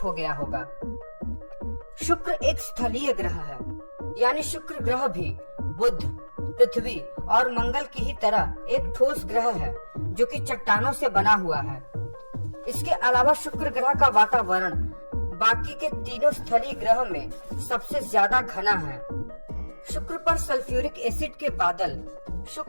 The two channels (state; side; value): inverted; both; correlation -1.00